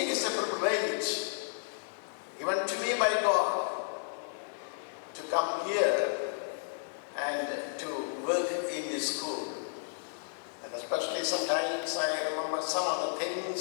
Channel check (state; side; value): silent; right; 56 dB below the other